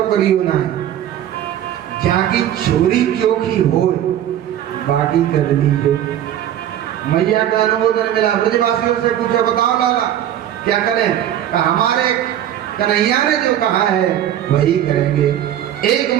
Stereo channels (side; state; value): left; quieter; 11.2 dB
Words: करियो ना है, जहाँ की छोरी चोखी हो बाकी कर लीजिए। मैया का अनुमोदन मिला। ब्रजवासियों से पूछो, बताओ लाला क्या करें? हमारे कन्हैया ने जो कहा है वही करेंगे। एक